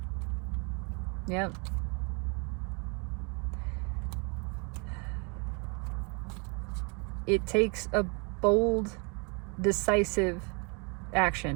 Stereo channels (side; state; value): left; quieter; 34.5 dB